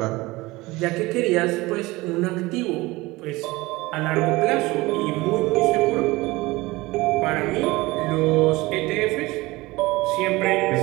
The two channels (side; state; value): left; quieter; 20.9 dB